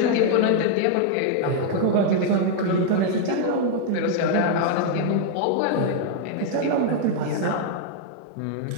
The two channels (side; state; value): both; different; correlation -0.01